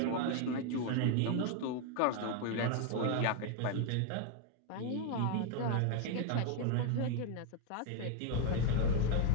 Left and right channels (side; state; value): both; different; correlation 0.01